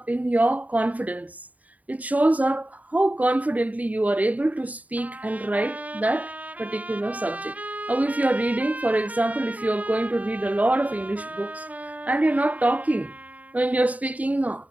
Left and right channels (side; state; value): left; late; 0.073 ms